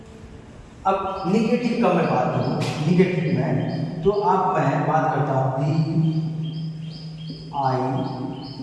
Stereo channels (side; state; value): both; identical; correlation 1.00